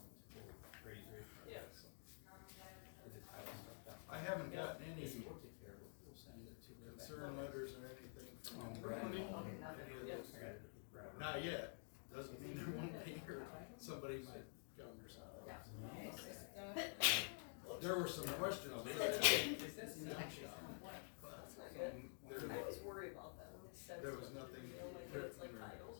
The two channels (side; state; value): right; silent; digital silence